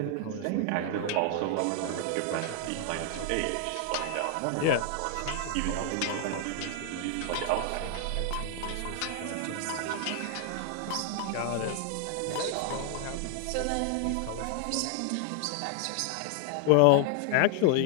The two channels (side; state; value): both; different; correlation 0.00